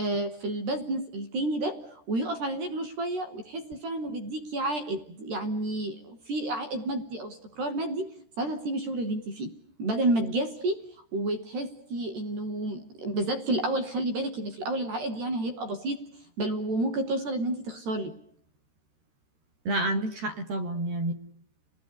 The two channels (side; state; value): left; late; 13 ms